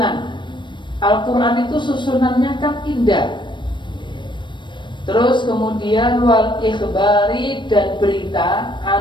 Al-Quran itu susunannya kan indah. Terus kemudian wal ikhbari, dan berita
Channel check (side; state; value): right; late; 0.22 ms